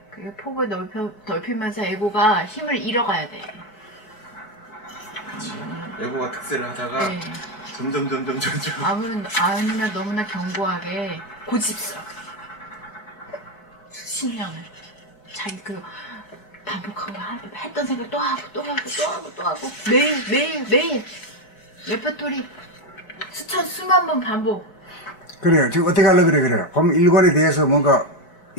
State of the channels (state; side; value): late; right; 4.9 ms